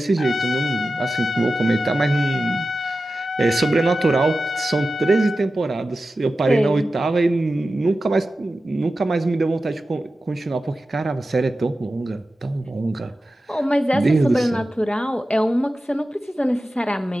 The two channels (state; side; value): normal; both; correlation 0.93